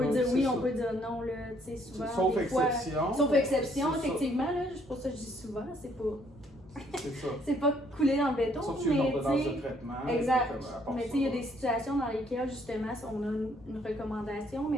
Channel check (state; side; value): normal; both; correlation 0.66